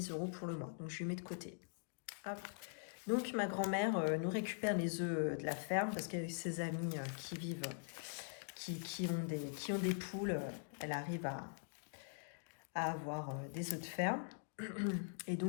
euros pour le mois. Donc, je lui mets de côté. Hop. Donc, ma grand-mère nous récupère les œufs de la ferme parce qu'avec ses amis qui vivent, qui ont des poules, elle arrive à avoir des œufs de ferme. Et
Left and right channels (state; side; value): silent; right; digital silence